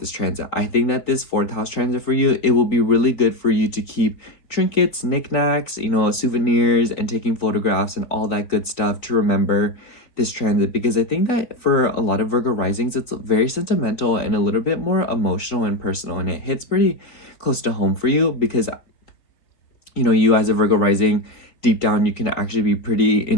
transit. I think that this 4th house transit for you, it will be really good for you to keep trinkets, knickknacks, you know, souvenirs, and taking photographs and all that good stuff to remember this transit, because I think that for a lot of Virgo risings, it's very sentimental and a little bit more emotional and personal, and it hits pretty close to home for you because, you know, you as a Virgo rising, deep down, you can actually be pretty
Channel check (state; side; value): late; right; 3.8 ms